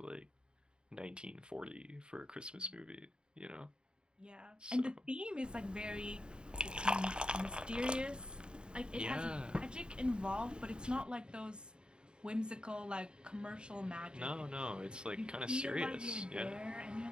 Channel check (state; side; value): late; left; 0.049 ms